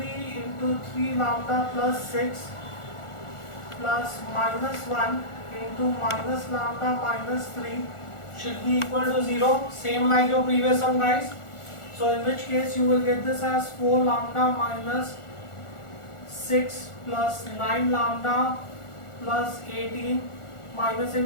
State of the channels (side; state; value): right; late; 1.4 ms